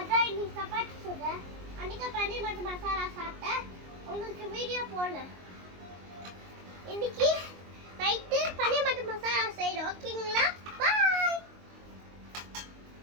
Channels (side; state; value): left; late; 22 ms